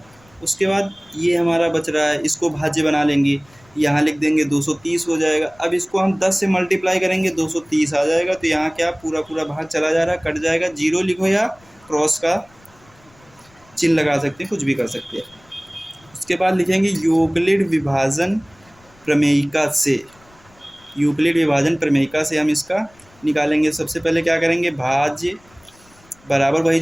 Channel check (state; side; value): noise; left; rumble, 29 dB below the sound